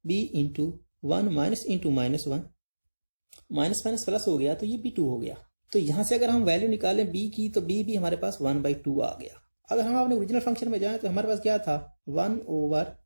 b into 1 minus into minus 1, minus minus plus हो गया तो ये b2 हो गया। तो यहां से अगर हम वैल्यू निकालें b की तो b भी हमारे पास 1/2 आ गया। अगर हम अपने ओरिजिनल फंक्शन में जाएं तो हमारे पास क्या था, 1 ओवर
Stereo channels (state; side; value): inverted; both; correlation -1.00